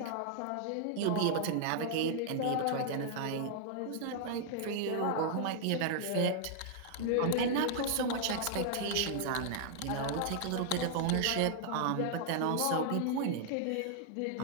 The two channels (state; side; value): different; both; correlation -0.01